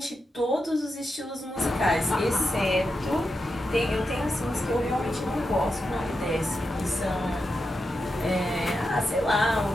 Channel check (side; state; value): both; normal; correlation 0.88